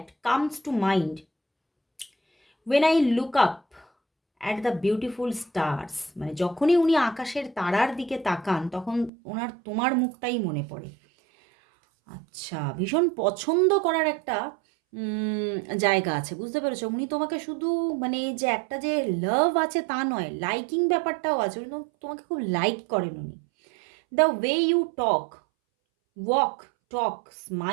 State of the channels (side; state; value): left; drops out; at 9.1 s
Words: comes to mind when I look up at the beautiful stars. মানে যখনই উনি আকাশের তারার দিকে তাকান তখন ওনার তোমার মুখটাই মনে পড়ে। আচ্ছা, ভীষণ পছন্দ করার একটা জায়গা আছে, বুঝতে পেরেছো? উনি তোমাকে শুধু মানে যে একটা যে লাভ আছে তা নয়, লাইকিং ব্যাপারটাও আছে। উনি তোমাকে খুব লাইক করেন উনি। The way you talk, walk, talk,